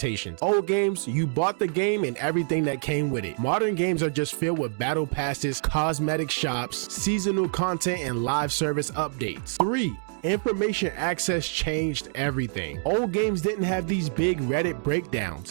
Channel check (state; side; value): silent; left; 61 dB below the other